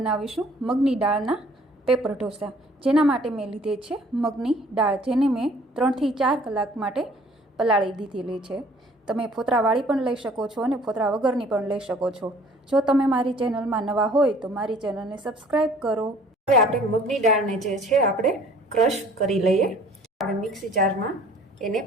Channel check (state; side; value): normal; both; correlation 0.54